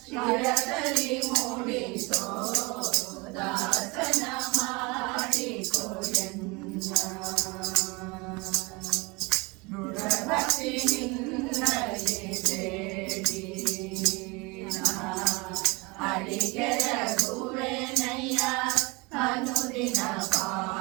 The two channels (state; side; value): quieter; left; 26.2 dB